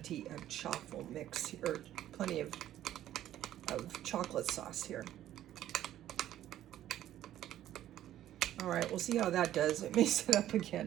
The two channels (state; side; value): quieter; left; 12.5 dB